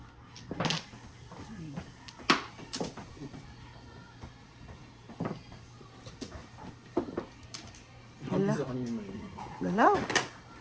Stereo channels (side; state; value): both; identical; correlation 1.00